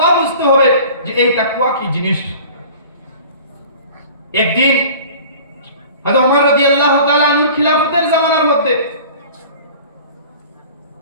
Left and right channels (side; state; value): both; inverted; correlation -0.44